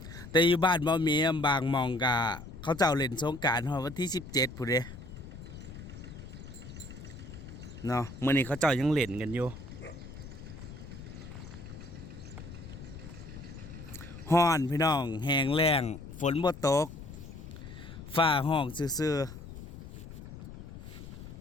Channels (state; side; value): noise; left; rumble, 13 dB below the sound